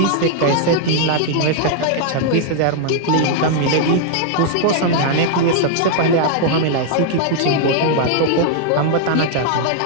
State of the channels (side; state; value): both; different; correlation 0.00